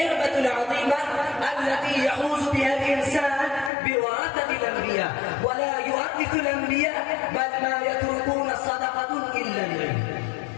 العظيمة التي يحوز بها الإنسان بورثة الأنبياء، ولا يورث الأنبياء بل ما يتركون صدقة إلا العلم،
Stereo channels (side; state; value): right; drops out; at 3.7 s